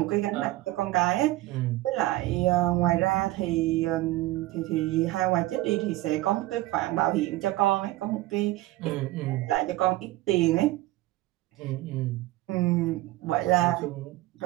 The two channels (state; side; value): quieter; left; 17.4 dB